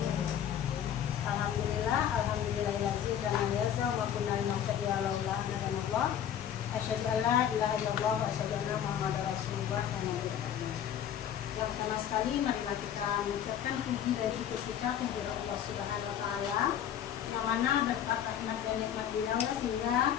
Alhamdulillahirabbil alamin wa kunna nahtadiya laula an hadana asyhadu an la ilaha illallah wa asyhadu anna muhammadar rasulullah. Yang pertama sekali marilah kita mengucapkan puji dan syukur kita kepada Allah Subhanahu wa taala yang mana berkat rahmat dan nikmat beliau sehingga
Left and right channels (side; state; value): right; quieter; 9.7 dB